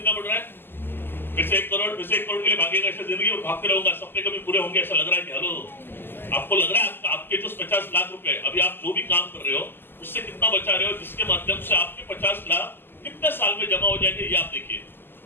बढ़ रहा है? फिर से 1 करोड़, फिर से 1 करोड़ के लिए भागेगा ऐसा जिंदगी में भागते रहूंगा, सपने कभी पूरे होंगे ऐसा लग रहा है कि हेलो आपको लग रहा है आपके जो 50 लाख रुपए अभी आप जो भी काम कर रहे हो उससे कितना बचा रहे हो, जिसके माध्यम से आपके 50 लाख कितने साल में जमा हो जाएंगे ये आप देखिए,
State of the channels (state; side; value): late; right; 0.099 ms